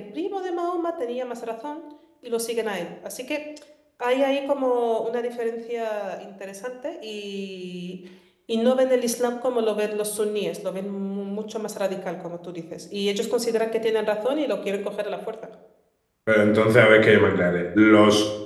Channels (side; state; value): both; identical; correlation 1.00